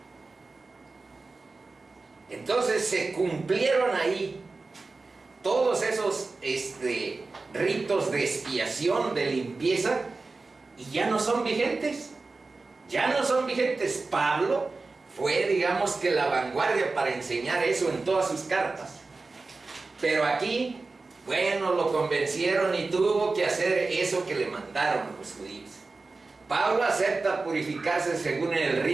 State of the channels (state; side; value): quieter; left; 3.7 dB